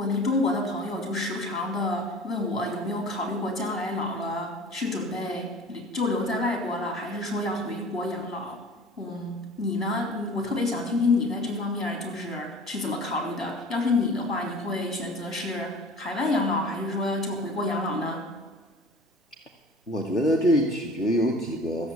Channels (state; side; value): normal; both; correlation 0.43